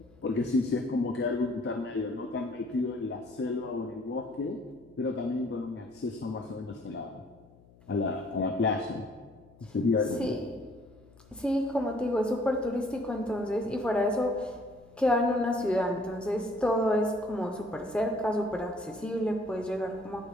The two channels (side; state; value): left; noise; hum, 26 dB below the sound